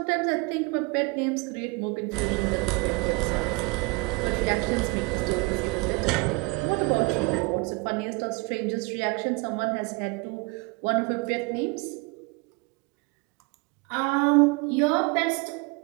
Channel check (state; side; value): quieter; left; 27.9 dB